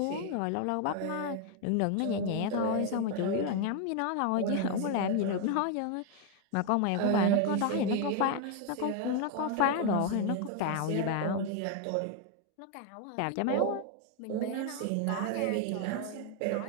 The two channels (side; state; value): both; different; correlation 0.01